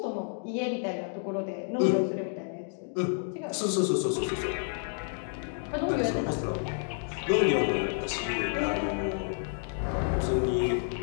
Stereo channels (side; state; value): right; silent; 58 dB below the other